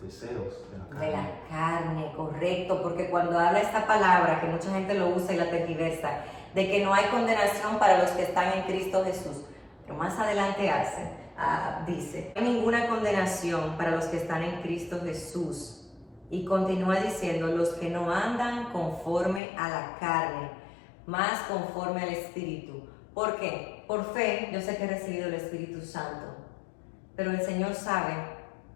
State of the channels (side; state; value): right; drops out; at 19.4 s